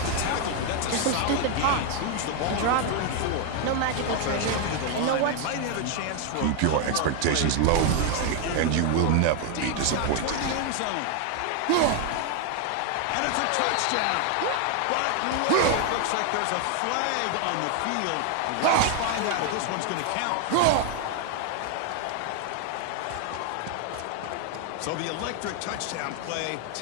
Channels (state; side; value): different; both; correlation 0.01